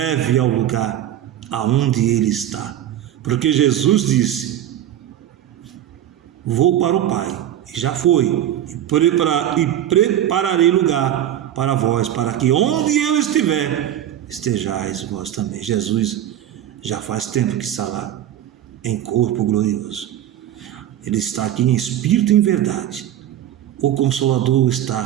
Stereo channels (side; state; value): left; quieter; 11.6 dB